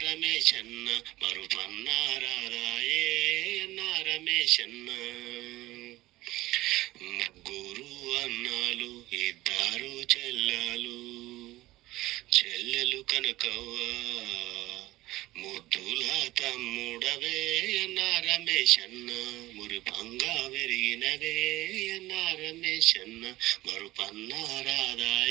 రమేశన్న, మరుపన్నా రాదాయే అన్నా రమేశన్న. ముగ్గురు అన్నాలు, ఇద్దరు చెల్లెలు, చెల్లెలు కనకవ్వ, ముద్దుల తమ్ముడవే అన్నా రమేశన్న, మురిపంగా పెరిగినవే అన్నా రమేశన్న, మరుపన్నా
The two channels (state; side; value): quieter; left; 17.6 dB